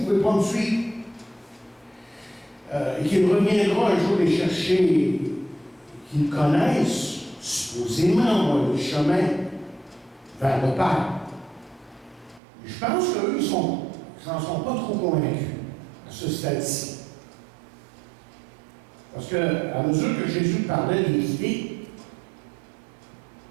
pouvez pas me suivre. Et qu'il reviendra un jour les chercher, qu'ils connaissent, supposément, le chemin vers le Père. Je pense qu'eux, ils n'en sont pas trop convaincus à ce stade-ci. Parce qu'à mesure que Jésus parlait des idées,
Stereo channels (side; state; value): left; drops out; at 12.4 s